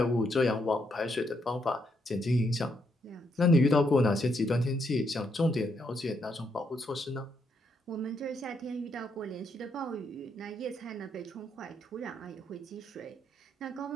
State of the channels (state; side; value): normal; both; correlation 0.77